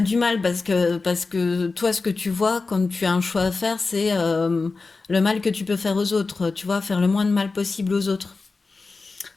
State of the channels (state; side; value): quieter; right; 4.0 dB